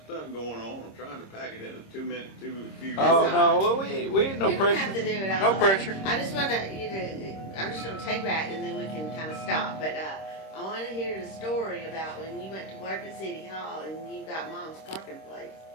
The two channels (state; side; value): late; right; 26 ms